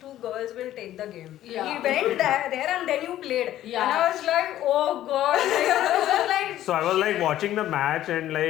girls will take the game. Yeah. He went there and then you played. Yeah. And I was like, oh god. So I was like watching the match and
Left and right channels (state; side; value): quieter; right; 13.1 dB